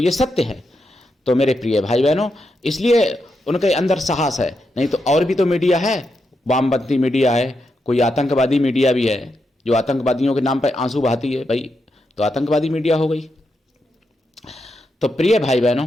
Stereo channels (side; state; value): both; normal; correlation 0.84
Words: सत्य है। तो मेरे प्रिय भाई बहनों, इसलिए उनके अंदर साहस है, नहीं तो और भी तो मीडिया है, वामपंथी मीडिया है, कोई आतंकवादी मीडिया भी है जो आतंकवादियों के नाम पर आंसू बहाती है भाई, तो आतंकवादी मीडिया हो गई। तो प्रिय भाई